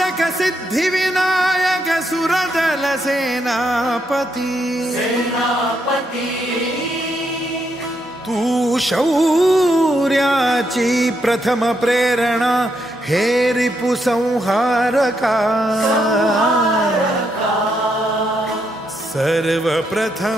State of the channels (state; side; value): normal; both; correlation 0.78